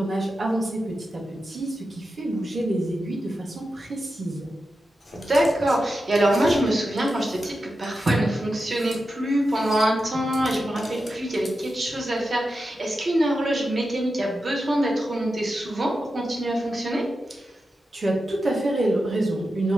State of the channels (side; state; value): both; normal; correlation 0.90